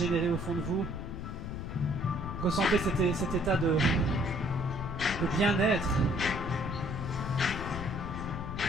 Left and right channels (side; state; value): left; noise; rumble, 6 dB below the sound